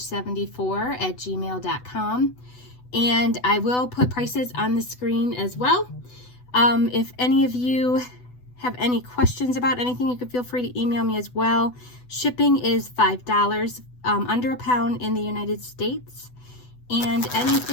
And I will put prices on the screen as well. If any of you have any questions about anything, you can feel free to email me as well. Shipping is $5, under a pound in the United States. And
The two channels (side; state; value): right; late; 8.0 ms